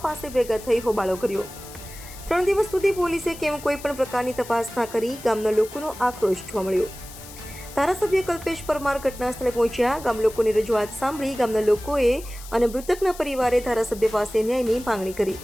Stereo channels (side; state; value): left; noise; hiss, 16 dB below the sound